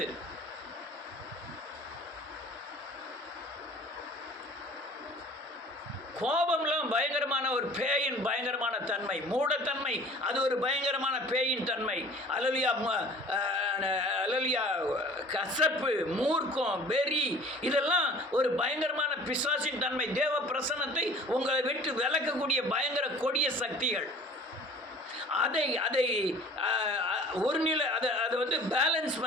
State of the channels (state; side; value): normal; both; correlation 0.47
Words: கோபம்லாம் பயங்கரமான ஒரு பேயின் பயங்கரமான தன்மை, மூடத்தன்மை, அது ஒரு பயங்கரமான பேயின் தன்மை. அலலியா கசப்பு, மூர்க்கம், வெறி, இதெல்லாம் ஒரு பயங்கரமான பிசாசின் தன்மை. தேவ பிரசன்னத்தை உங்களை விட்டு விலக்கக்கூடிய பயங்கர கொடிய சக்திகள். அதை ஒரு நிலை அதை வந்து பேலன்ஸ்